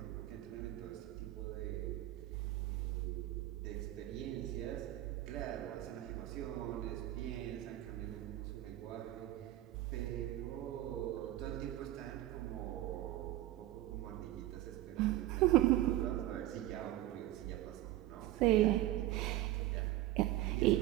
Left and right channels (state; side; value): quieter; left; 15.2 dB